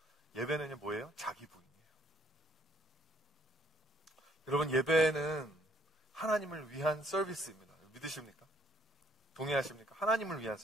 예배는 뭐예요? 자기 부인이에요. 여러분, 예배는 하나님을 위한 서비스입니다. 믿으십니까? 동의하십니까? 하나님을 위한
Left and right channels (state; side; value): normal; both; correlation 0.65